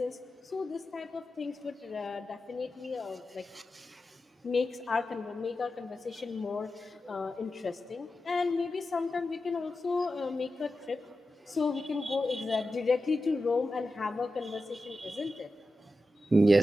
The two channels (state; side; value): normal; both; correlation 0.91